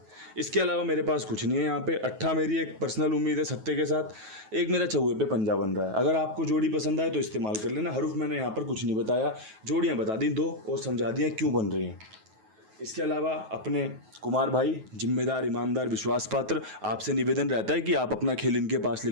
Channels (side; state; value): left; late; 9.3 ms